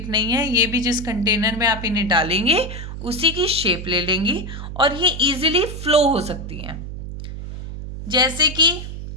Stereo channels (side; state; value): right; noise; hum, 8 dB below the sound